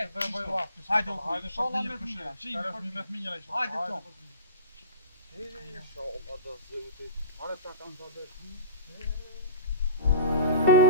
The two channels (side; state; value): both; inverted; correlation -0.36